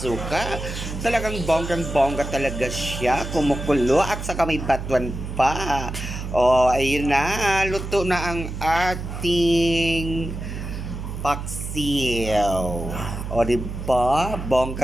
Talagang bonggang-bongga talaga siya, kumukulo at saka may batuan pa. O, ayun na, luto na ang ating paksiw. O, diba?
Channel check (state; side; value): noise; right; hum, 7 dB below the sound